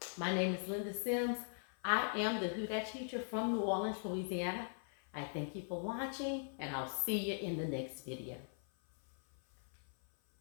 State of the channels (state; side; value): silent; right; 51 dB below the other